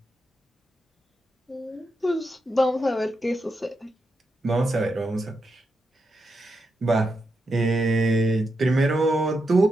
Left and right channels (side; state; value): both; normal; correlation 0.86